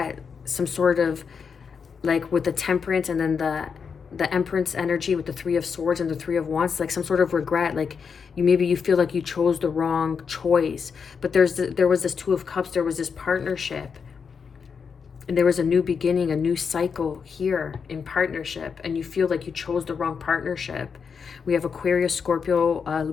some sort of, like with the Temperance and then the Empress energy with the Three of Swords and the Three of Wands, like some sort of regret, like you feel like you chose the wrong choice. But there was this Two of Cups, there was this partnership, and there was a new beginning, a new cycle here in partnership, and you feel like you chose the wrong partnership. We have Aquarius, Scorpio,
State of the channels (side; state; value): right; quieter; 6.1 dB